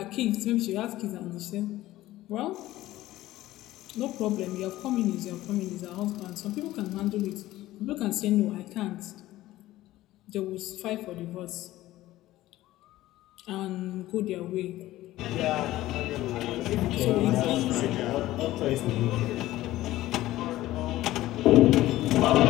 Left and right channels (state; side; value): quieter; right; 15.9 dB